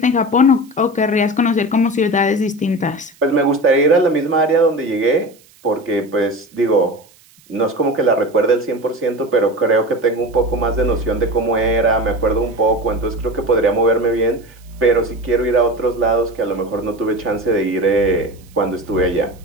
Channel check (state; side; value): noise; right; hiss, 29 dB below the sound